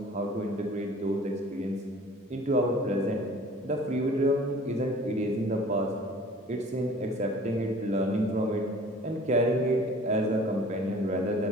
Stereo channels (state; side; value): normal; both; correlation 0.48